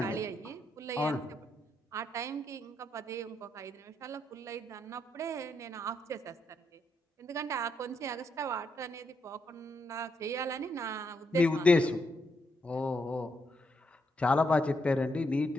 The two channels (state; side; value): normal; both; correlation 0.79